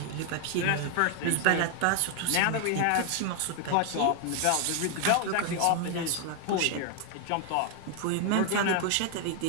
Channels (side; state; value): both; different; correlation 0.00